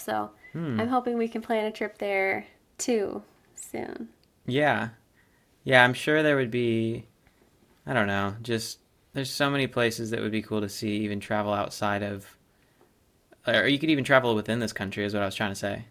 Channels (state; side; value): identical; both; correlation 1.00